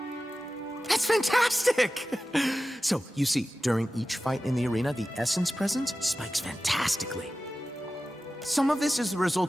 That's fantastic! So, you see, during each fight in the arena, the essence presence spikes fantastically. Some of this is the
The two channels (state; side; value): normal; both; correlation 0.94